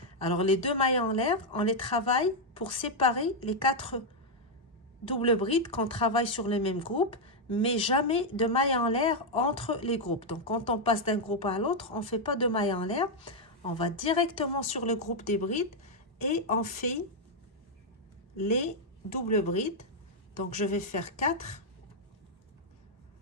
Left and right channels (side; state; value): both; normal; correlation -0.01